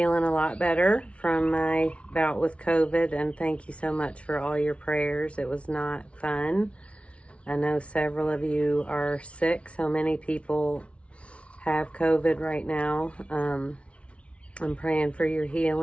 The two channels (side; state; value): right; late; 0.061 ms